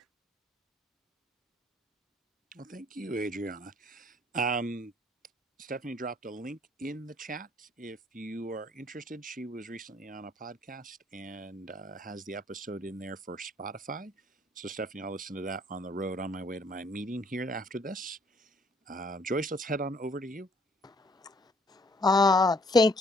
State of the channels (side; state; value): both; normal; correlation 0.62